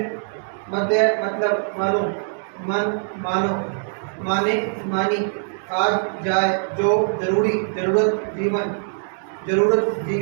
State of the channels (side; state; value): left; silent; digital silence